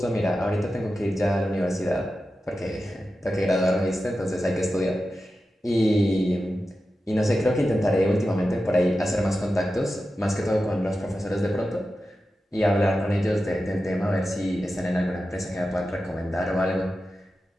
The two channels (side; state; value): both; normal; correlation 0.92